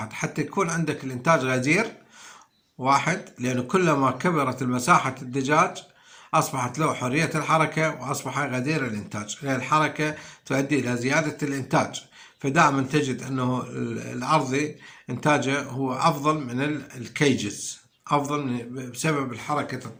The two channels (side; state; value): both; identical; correlation 1.00